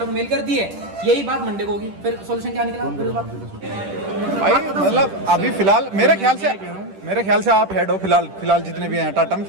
को मेल कर दी है, यही बात मंडे को होगी। फिर सॉल्यूशन क्या निकला? फिर उस बात भाई मतलब अभी फिलहाल मेरे ख्याल से आप हेड हो फिलहाल जितने भी हैं टाटा में,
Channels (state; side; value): late; left; 10 ms